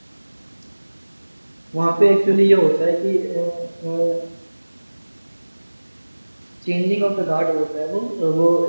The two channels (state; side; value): inverted; both; correlation -1.00